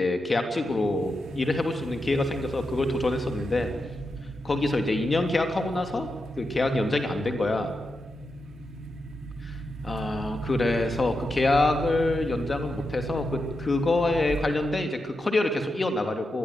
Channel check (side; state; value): both; normal; correlation 0.87